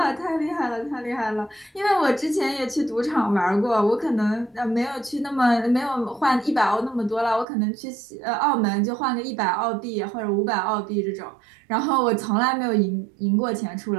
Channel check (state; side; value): drops out; left; at 7.5 s